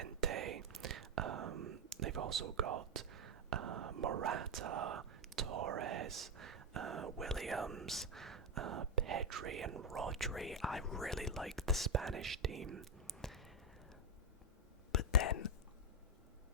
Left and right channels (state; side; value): normal; both; correlation 0.05